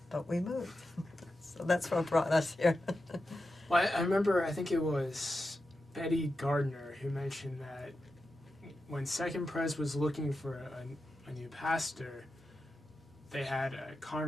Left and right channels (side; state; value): both; normal; correlation 0.90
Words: but we moved. So that's what brought us here. Well, I remember, I think it was Betty Gardner who mentioned that when Second Pres was looking for a new pastor, they had a